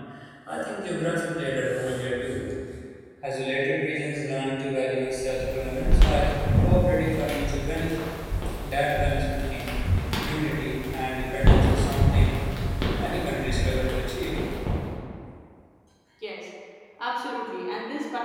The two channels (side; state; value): both; identical; correlation 1.00